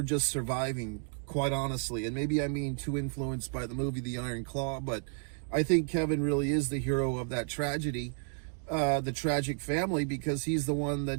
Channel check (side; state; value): left; silent; 56 dB below the other